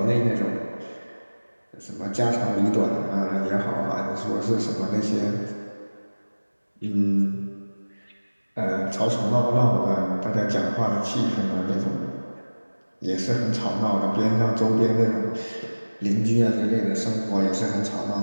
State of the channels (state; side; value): inverted; both; correlation -1.00